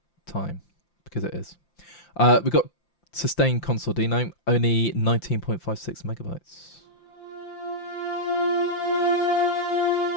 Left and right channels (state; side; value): late; right; 5.8 ms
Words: time because it is. We've got sustained consordino, only 19.56 megabytes.